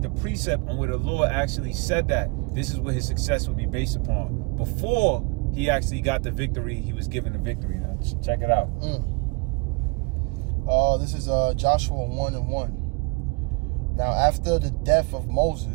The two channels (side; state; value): left; quieter; 29.6 dB